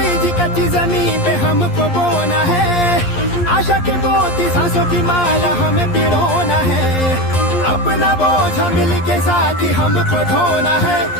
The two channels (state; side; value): late; right; 11 ms